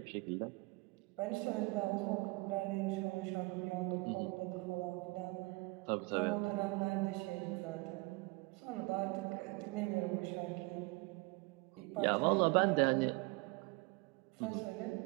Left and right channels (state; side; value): quieter; left; 25.7 dB